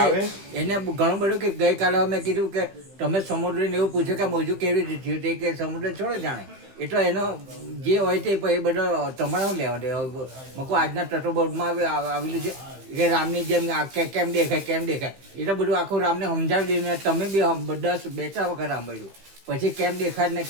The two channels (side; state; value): left; late; 15 ms